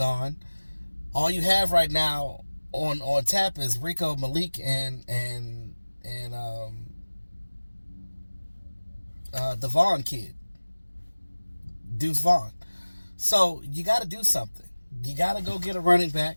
All you have right now on tap is Rico, Malik, and the Vaughn kid, Deuce Vaughn. So you got to do something. You got to go get a running back,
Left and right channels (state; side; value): inverted; both; correlation -1.00